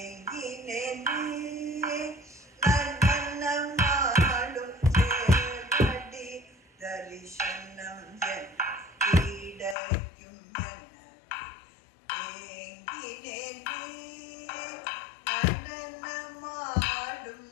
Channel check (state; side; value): drops out; right; at 9.8 s